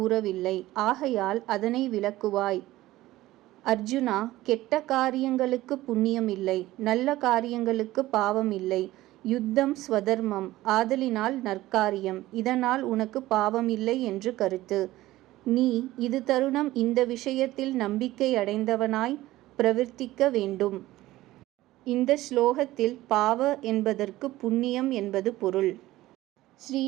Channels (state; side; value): quieter; left; 16.6 dB